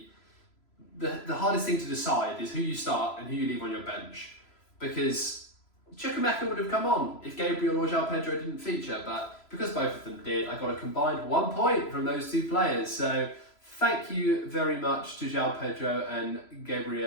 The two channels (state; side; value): late; right; 3.0 ms